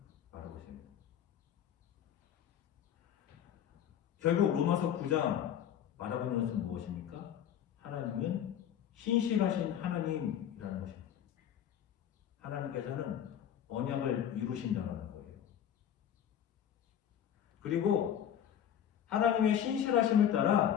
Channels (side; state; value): right; quieter; 9.6 dB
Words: 말하고 있습니다. 결국 로마서 9장 말하고 있는 것은 무엇입니까? 하나님은 신실하신 하나님이라는 것입니다. 하나님께서는 언약을 이루신다는 거예요. 그리고 하나님의 신실하심을